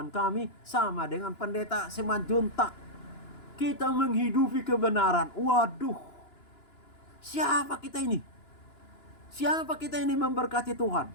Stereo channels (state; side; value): late; right; 2.9 ms